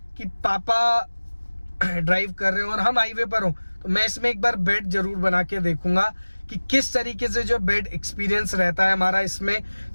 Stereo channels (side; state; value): both; inverted; correlation -1.00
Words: कि पापा ड्राइव कर रहे हो और हम हाईवे पर हो तो मैं इसमें एक बार बेड जरूर बना के देखूंगा कि किस तरीके से जो बेड एक्सपीरियंस रहता है हमारा। इसमें